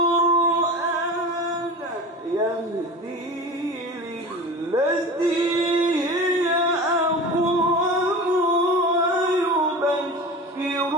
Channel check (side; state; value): both; normal; correlation 0.33